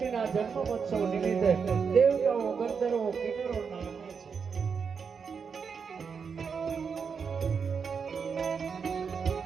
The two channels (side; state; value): left; quieter; 6.0 dB